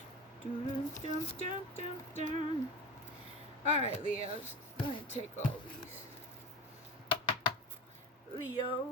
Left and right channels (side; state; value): both; normal; correlation 0.29